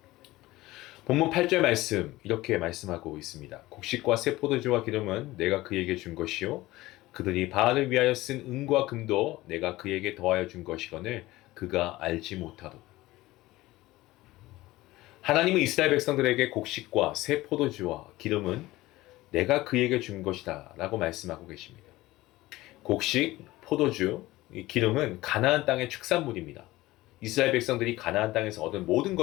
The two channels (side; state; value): right; quieter; 18.2 dB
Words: 본문 8절 말씀 이렇게 말씀하고 있습니다. 곡식과 새 포도주와 기름은 내가 그에게 준 것이요 그들이 바알을 위하여 쓴 은과 금도 내가 그에게 더하여 준 것이거늘 그가 알지 못하도다. 하나님은 이스라엘 백성들에게 곡식과 새 포도주와 기름은 내가 그에게 준 것이다 라고 말씀하고 계십니다. 곡식, 포도주, 기름은 가나안 땅의 축산물입니다. 이스라엘 백성들이 가나안 땅에서 얻은 모든